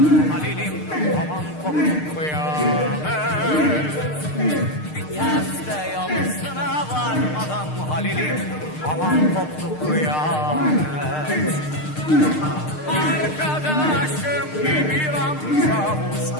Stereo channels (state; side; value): late; right; 6.5 ms